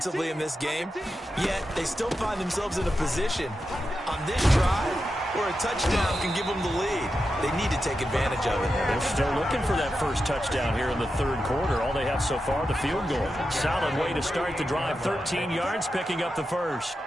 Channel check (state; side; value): normal; both; correlation 0.89